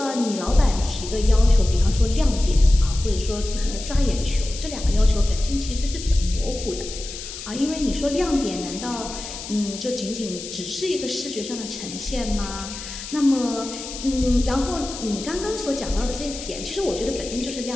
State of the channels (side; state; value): left; noise; hiss, 10 dB below the sound